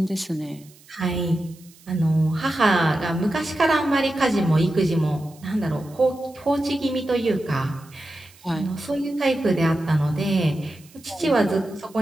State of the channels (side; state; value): right; noise; hiss, 26 dB below the sound